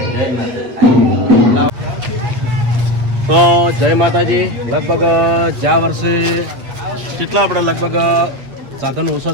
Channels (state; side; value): late; left; 8.0 ms